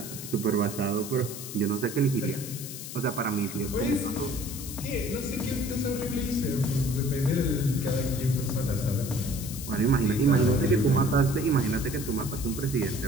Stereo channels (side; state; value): left; noise; hiss, 10 dB below the sound